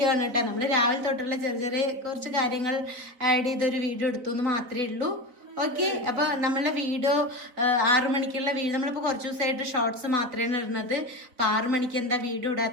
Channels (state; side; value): late; left; 4.0 ms